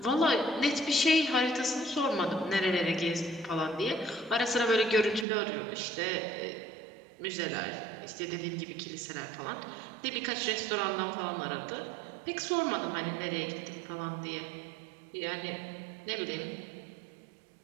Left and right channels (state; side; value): drops out; left; at 5.2 s